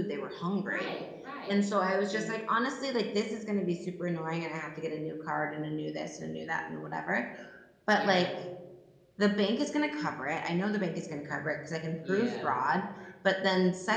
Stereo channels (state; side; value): identical; both; correlation 1.00